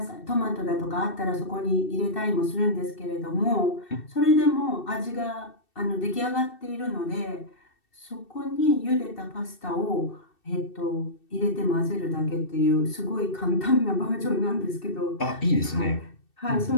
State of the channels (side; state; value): right; late; 2.7 ms